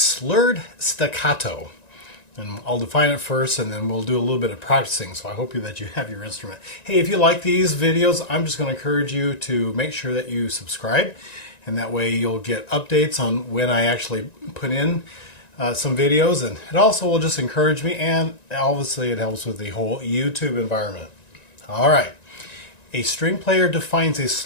staccato. And I'll define it first and then we'll do a little bit of practicing, so I hope that you have your instrument. Hey, if you like these videos, I'm just going to encourage you to make sure that you subscribe, and that way you'll get updates on when I actually put in some videos, and it also will just encourage me, and obviously it helps with the whole YouTube environment. Alright, a string player defines a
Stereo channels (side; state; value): right; late; 1.9 ms